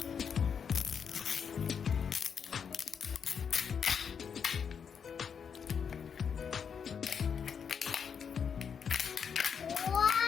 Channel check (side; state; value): right; quieter; 6.9 dB